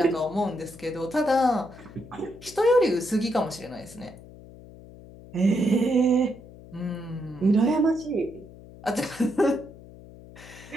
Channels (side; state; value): left; noise; hum, 19 dB below the sound